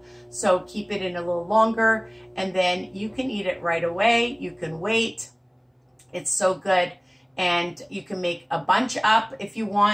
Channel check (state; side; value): identical; both; correlation 1.00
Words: so keep it in a little longer, and then you can eat it right away. You can wait. It's so good, and you can make a bunch up if you